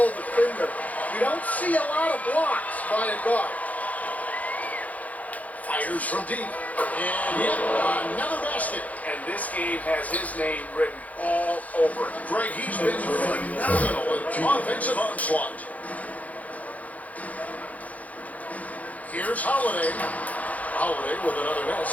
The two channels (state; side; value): late; right; 0.073 ms